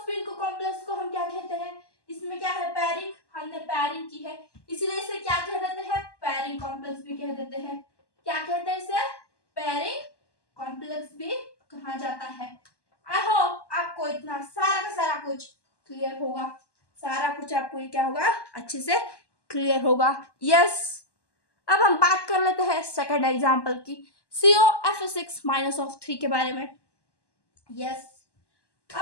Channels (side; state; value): right; late; 1.1 ms